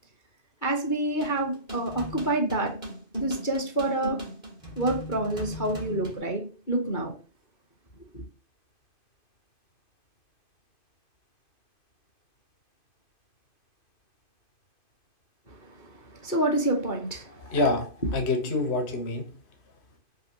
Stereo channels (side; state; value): right; late; 2.5 ms